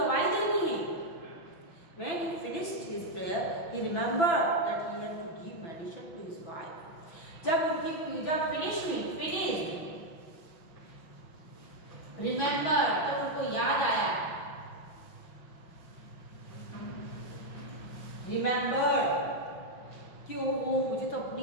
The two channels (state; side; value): late; right; 6.1 ms